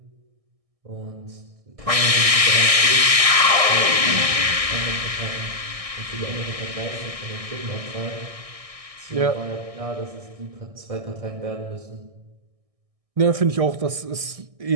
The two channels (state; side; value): late; left; 1.6 ms